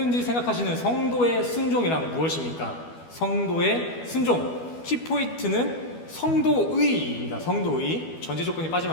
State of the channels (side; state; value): right; late; 12 ms